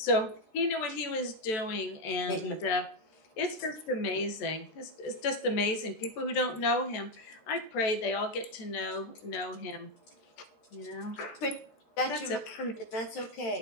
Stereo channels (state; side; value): late; right; 14 ms